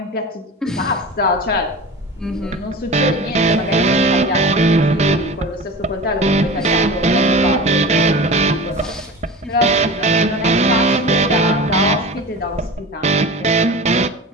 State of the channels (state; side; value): normal; both; correlation 0.33